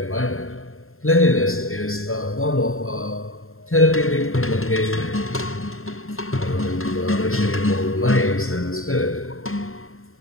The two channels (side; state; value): right; late; 0.61 ms